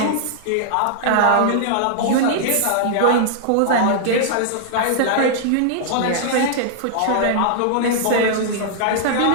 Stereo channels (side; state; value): both; different; correlation -0.01